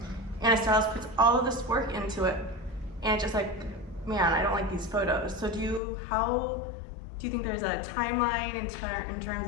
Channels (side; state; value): right; drops out; at 5.8 s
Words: and a stylist puts all of this work into it, and it's just like, man, I don't like these photos. So do you think there's a timeline in terms